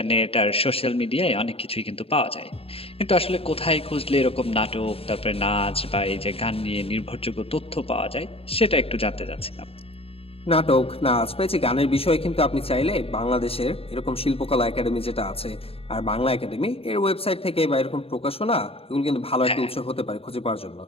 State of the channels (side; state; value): right; late; 0.28 ms